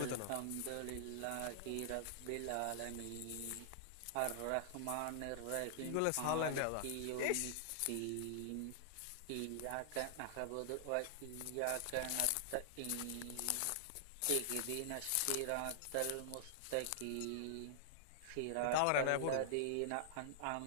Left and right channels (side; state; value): both; different; correlation -0.01